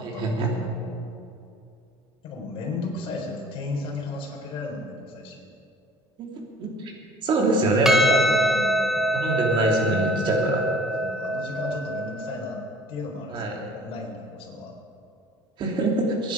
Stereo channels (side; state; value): both; normal; correlation 0.50